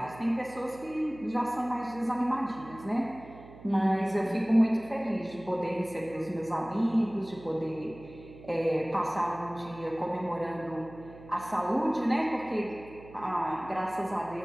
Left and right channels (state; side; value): noise; right; hum, 18 dB below the sound